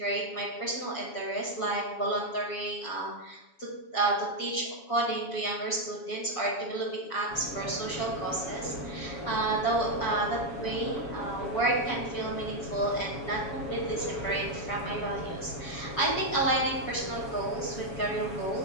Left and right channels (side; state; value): right; late; 7.1 ms